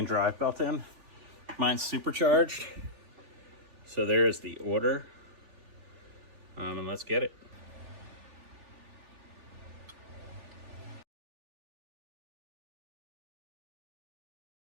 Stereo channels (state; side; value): late; left; 3.4 ms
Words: drive belt in. Mine's supercharged. So there's the order. And let's get it.